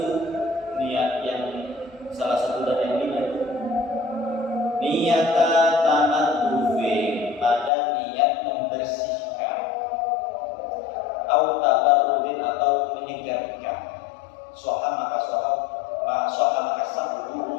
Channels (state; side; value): drops out; right; at 7.7 s